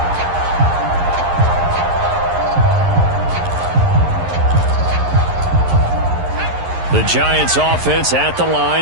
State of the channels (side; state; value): left; late; 11 ms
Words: The Giants offense at the